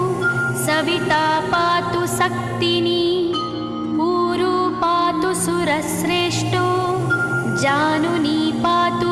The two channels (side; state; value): both; identical; correlation 1.00